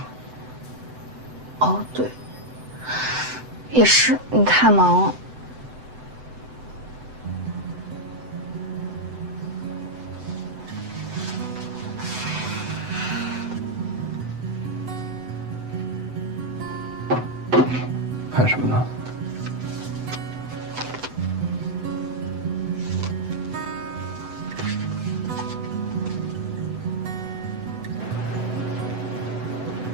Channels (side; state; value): left; late; 7.9 ms